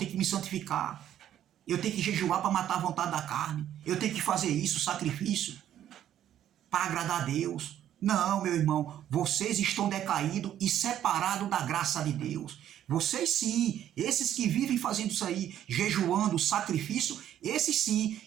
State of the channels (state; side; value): quieter; left; 11.1 dB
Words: me santificar. Eu tenho que jejuar para matar a vontade da carne. Eu tenho que fazer isso, sacrifício, para agradar a Deus. Não, meu irmão, vocês estão decaídos e separados da graça de Deus. Vocês sim, esses que vivem fazendo isso aí, jejuando, sacrifício, esses sim,